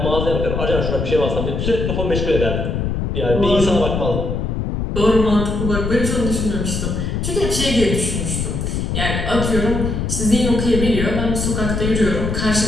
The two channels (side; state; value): left; noise; rumble, 2 dB below the sound